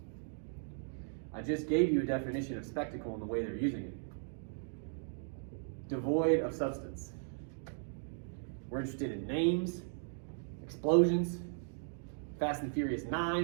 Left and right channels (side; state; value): left; silent; digital silence